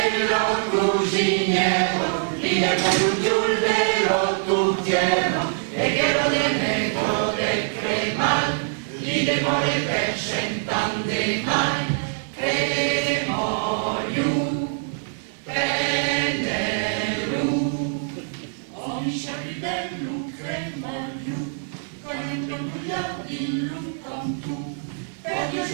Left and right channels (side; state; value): left; silent; digital silence